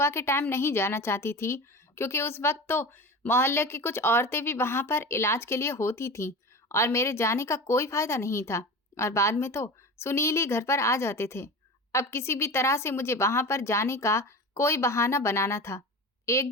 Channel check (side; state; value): both; normal; correlation 0.30